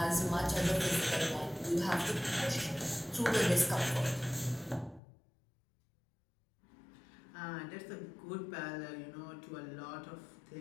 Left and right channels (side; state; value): right; drops out; at 5.0 s